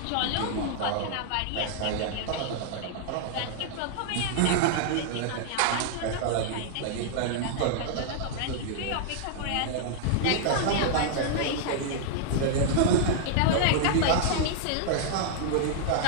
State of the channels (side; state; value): both; different; correlation -0.01